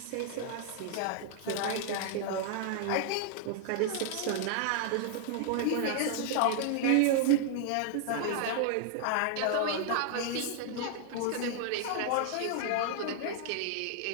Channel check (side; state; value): both; different; correlation -0.01